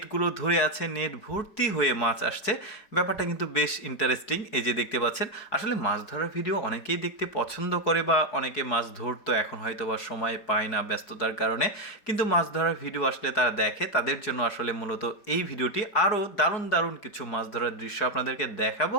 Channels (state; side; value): late; right; 4.7 ms